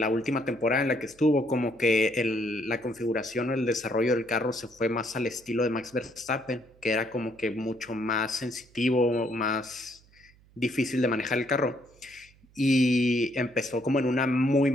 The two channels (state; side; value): noise; right; hum, 28 dB below the sound